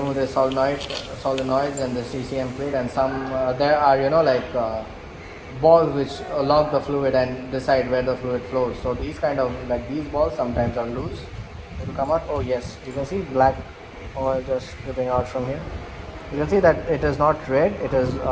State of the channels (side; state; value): both; identical; correlation 1.00